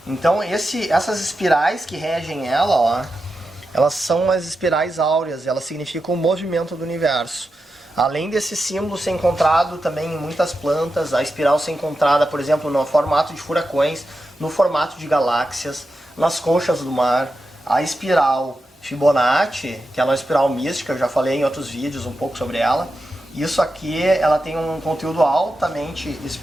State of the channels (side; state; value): both; normal; correlation 0.89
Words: Então essas espirais que regem ela, ó, elas são as espirais áureas, elas significam o movimento do universo. Além desse símbolo ser encontrado também em muitas plantas, a espiral ser encontrada, por exemplo, no formato de furacões, no formato de galáxias, nas conchas do mar. A espiral Fibonacci, que ela é uma espiral mística, eu já falei em outros vídeos um pouco sobre ela. Isso aqui, ela tem um conteúdo altamente